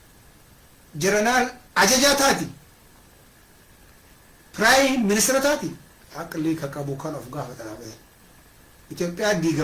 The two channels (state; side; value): identical; both; correlation 1.00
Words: ጀነራል አጀጃ ታቲ ፕራይም ሚኒስትር ታቲ አቅሊ ከቀቡ ካን ኦፍ ጋር ተራበ ኢትዮጵያ